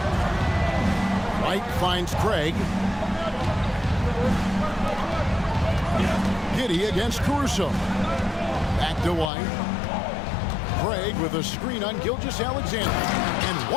White finds Craig. Giddey against Caruso. Back to White. Craig with a screen on Gilgeous-Alexander. And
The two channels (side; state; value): right; drops out; at 9.3 s